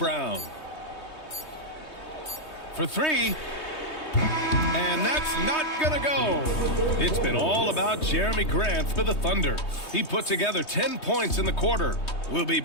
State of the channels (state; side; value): late; right; 3.2 ms